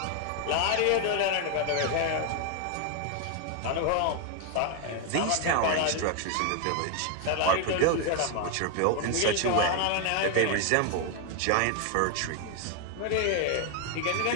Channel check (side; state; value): both; different; correlation 0.01